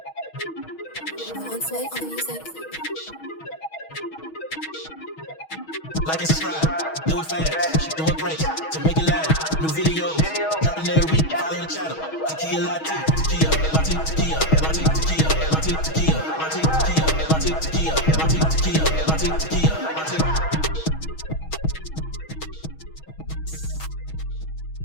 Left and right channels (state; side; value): late; right; 6.3 ms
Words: Like and subscribe, do it fast, she doing great, to make it last, new videos, dropping every week, follow the channel, Takia Latte, Takia, Latte, Takia, Latte, Takia, Latte, Takia, Latte, Takia, Latte, Takia, Latte, Takia, Latte, Takia, Latte.